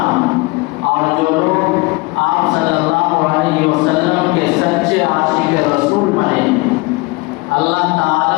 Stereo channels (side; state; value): right; quieter; 24.4 dB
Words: اور جو لوگ آپ صلی اللہ علیہ وسلم کے سچے عاشق رسول بنے، اللہ تعالیٰ